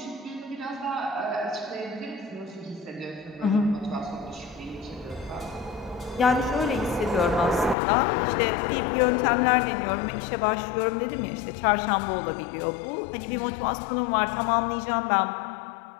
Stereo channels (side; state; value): right; drops out; at 7.8 s